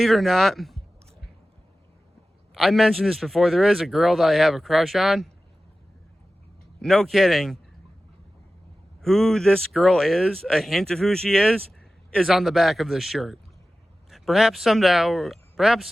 it or not, I mentioned this before. There is a girl that I have a crush on. No kidding. Who this girl is, a hint of who she is on the back of this shirt. Perhaps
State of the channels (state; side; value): normal; both; correlation 0.95